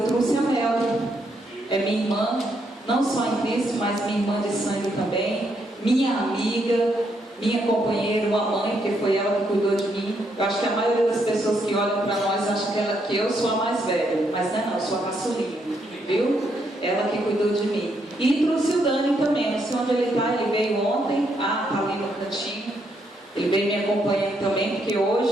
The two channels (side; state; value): both; normal; correlation 0.76